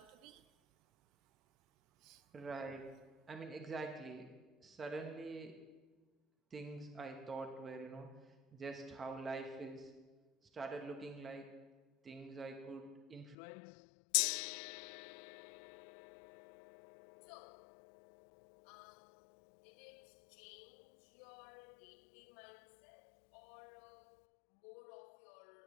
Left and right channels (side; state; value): right; drops out; at 13.4 s